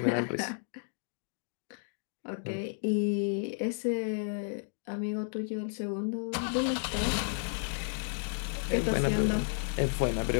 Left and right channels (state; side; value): silent; right; digital silence